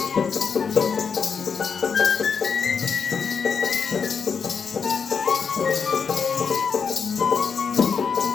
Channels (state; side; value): quieter; right; 6.1 dB